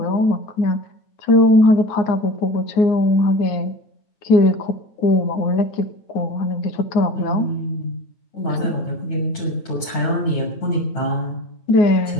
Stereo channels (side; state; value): right; late; 9.1 ms